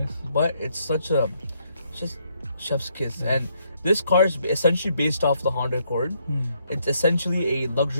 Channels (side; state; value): both; inverted; correlation -0.73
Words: But it's just chef's kiss. And this car is essentially based off the Honda Accord. It's essentially a